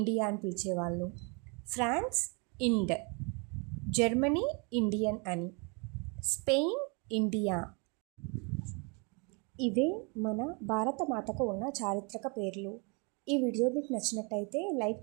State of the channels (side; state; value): left; quieter; 33.0 dB